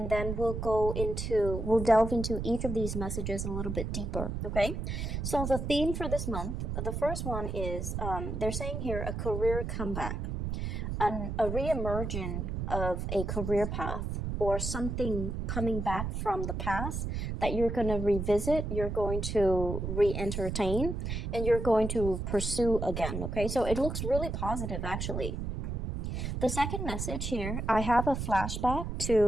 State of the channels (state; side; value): noise; right; rumble, 3 dB below the sound